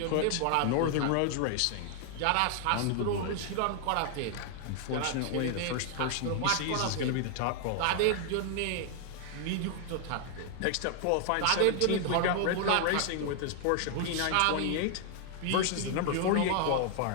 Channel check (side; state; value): both; different; correlation 0.00